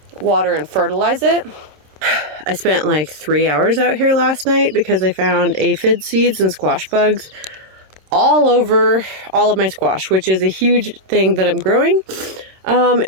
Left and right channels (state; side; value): late; left; 26 ms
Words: water and fertilize it. I spent like 3 hours out here last night because I found aphid seeds and squash bugs all over all of my squash, which is a huge thing that I'm growing.